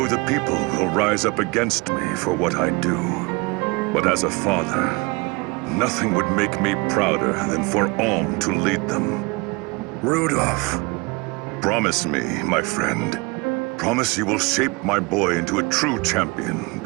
the people will rise up against me for what I do. But as a father, nothing would make me prouder than for Alm to lead them. Rudolph. Promise me, my friend. Promise you will shape my boy into a true champion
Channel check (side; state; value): left; quieter; 26.8 dB